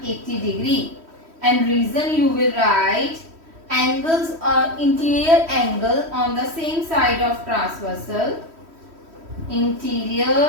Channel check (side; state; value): left; late; 3.1 ms